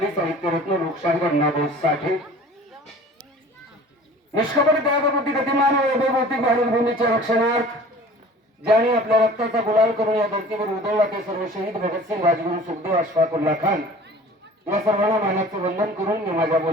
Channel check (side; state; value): both; normal; correlation 0.45